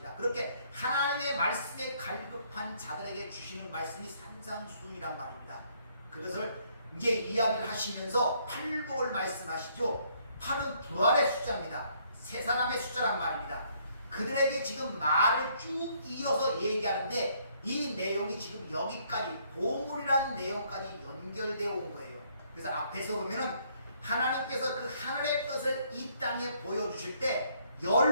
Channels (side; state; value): both; inverted; correlation -0.67